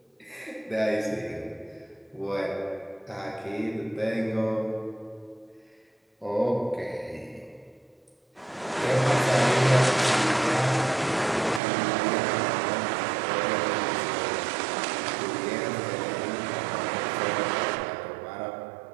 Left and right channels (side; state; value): left; drops out; at 11.6 s